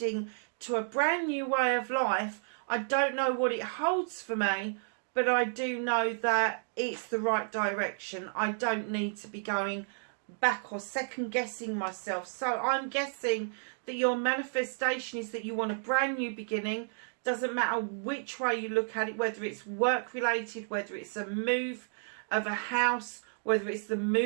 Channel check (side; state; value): left; silent; digital silence